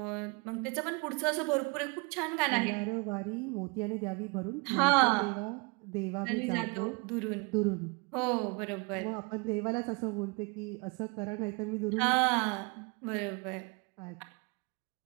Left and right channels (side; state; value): left; quieter; 30.6 dB